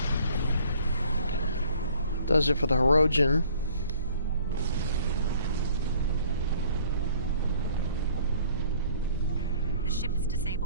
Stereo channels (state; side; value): inverted; both; correlation -0.55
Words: Does it for the Hirogen. The ship is